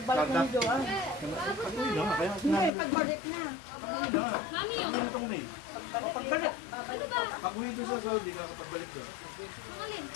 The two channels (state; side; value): drops out; right; at 2.7 s